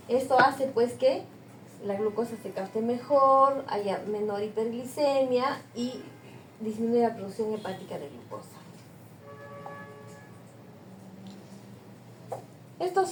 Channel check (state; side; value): identical; both; correlation 1.00